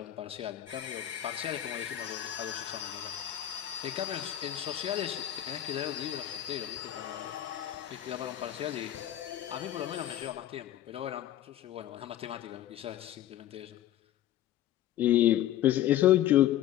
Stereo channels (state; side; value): quieter; right; 12.4 dB